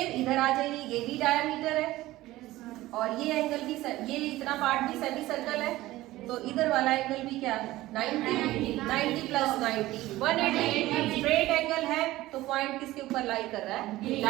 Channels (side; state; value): left; quieter; 17.0 dB